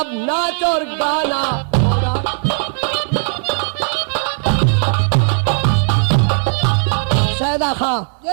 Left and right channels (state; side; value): silent; left; 60 dB below the other